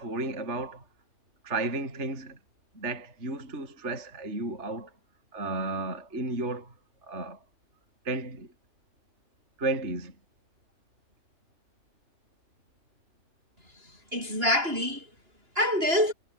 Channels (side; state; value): left; late; 2.9 ms